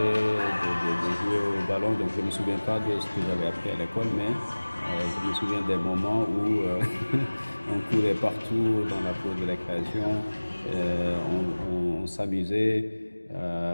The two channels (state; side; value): inverted; both; correlation -1.00